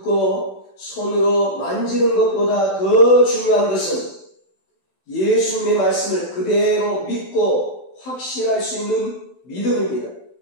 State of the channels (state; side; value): late; right; 12 ms